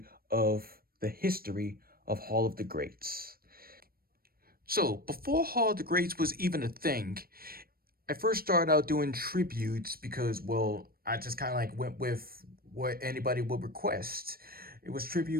of the history of Hall of the Greats. So, before Hall of the Greats was even a thing, I first started out doing tributes because, well, I just kind of like went with what anybody would request. It was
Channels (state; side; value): late; left; 0.43 ms